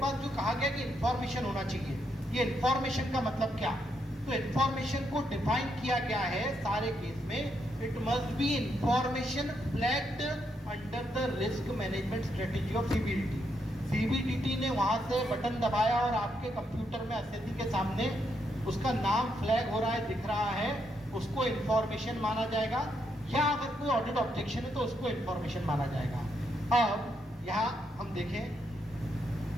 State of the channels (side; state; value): both; normal; correlation 0.78